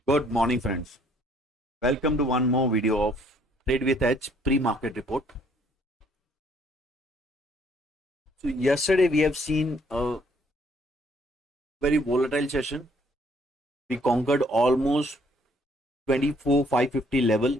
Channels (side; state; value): both; normal; correlation 0.64